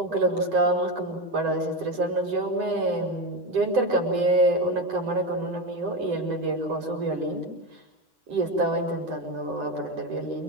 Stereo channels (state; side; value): late; left; 8.1 ms